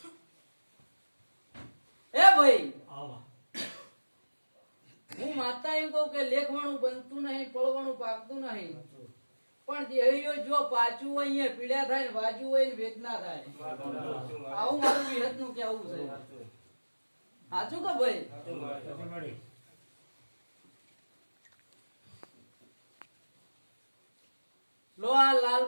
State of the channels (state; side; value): inverted; both; correlation -1.00